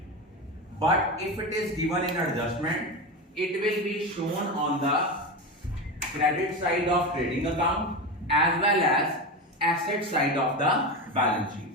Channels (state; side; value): normal; both; correlation 0.20